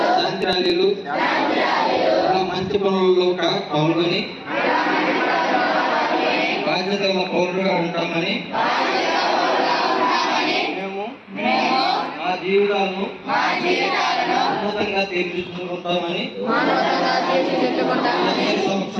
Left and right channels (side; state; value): both; identical; correlation 1.00